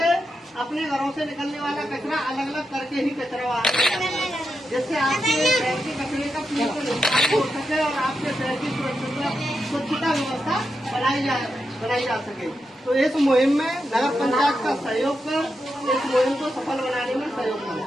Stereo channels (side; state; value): both; normal; correlation 0.86